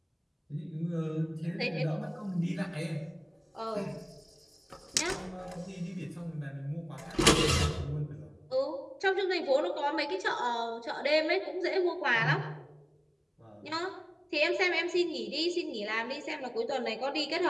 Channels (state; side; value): identical; both; correlation 1.00